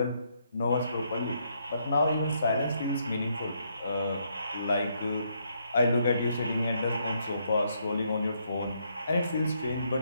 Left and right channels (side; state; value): both; inverted; correlation -0.74